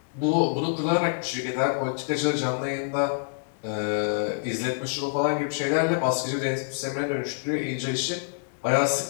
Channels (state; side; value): silent; right; digital silence